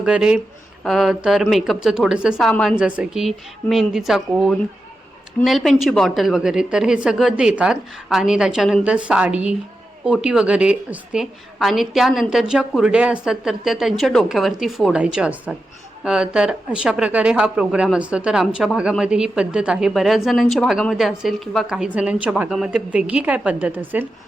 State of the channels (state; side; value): normal; both; correlation 0.90